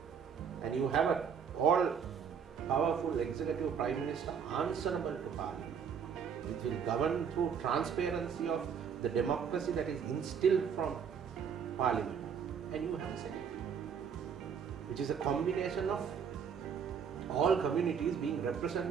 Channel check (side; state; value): left; quieter; 7.1 dB